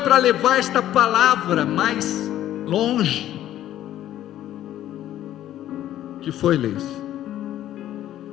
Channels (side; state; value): right; quieter; 12.6 dB